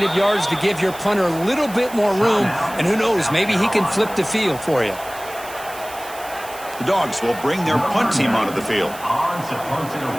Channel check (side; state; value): right; noise; hiss, 16 dB below the sound